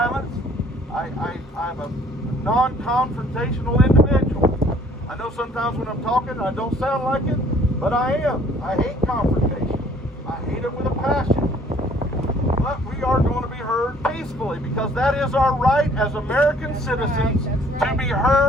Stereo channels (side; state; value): both; normal; correlation 0.58